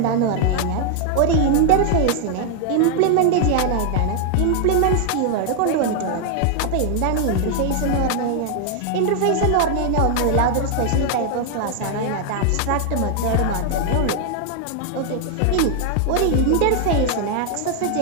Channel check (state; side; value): different; both; correlation 0.00